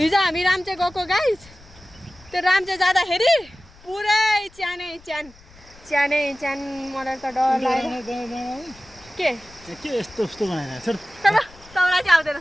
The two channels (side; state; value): left; noise; rumble, 25 dB below the sound